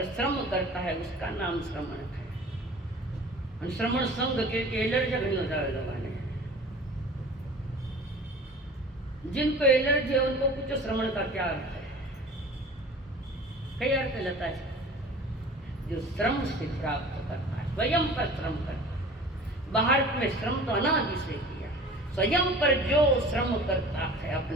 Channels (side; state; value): both; normal; correlation 0.43